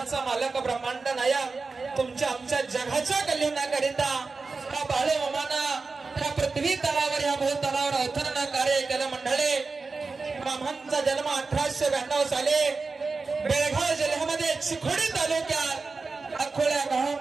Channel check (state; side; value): quieter; left; 4.2 dB